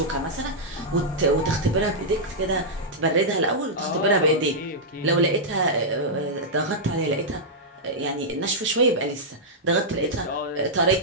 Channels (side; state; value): both; normal; correlation -0.08